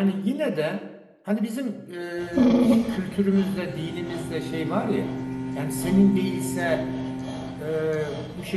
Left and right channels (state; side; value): identical; both; correlation 1.00